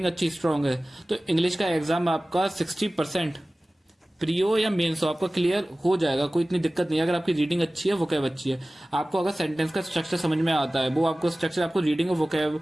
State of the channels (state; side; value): normal; both; correlation 0.97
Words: अच्छी स्ट्रांग है तो इंग्लिश का एग्जाम आपका 60% प्रियो या मेंस हो आपका क्लियर हो जाएगा, कोई इतनी दिक्कत नहीं है। अगर आपकी रीडिंग अच्छी है, वोकैब अच्छी है, आपको अगर सेंटेंस का स्ट्रक्चर समझ में आता है, वो आपको स्ट्रक्चर आपको रीडिंग और वोकैब